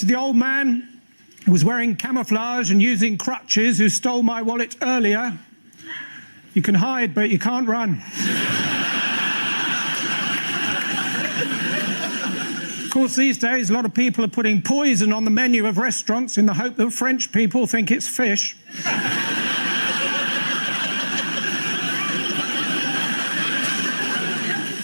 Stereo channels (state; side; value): inverted; both; correlation -1.00